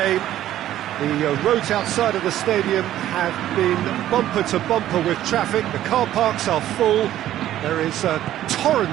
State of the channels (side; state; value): left; quieter; 12.8 dB